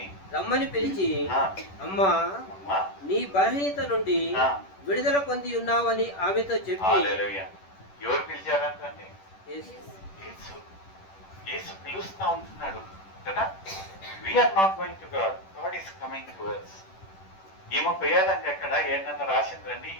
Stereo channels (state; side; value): late; right; 10 ms